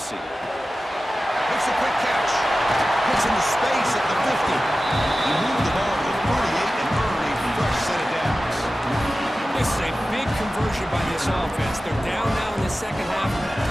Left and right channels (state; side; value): normal; both; correlation 0.95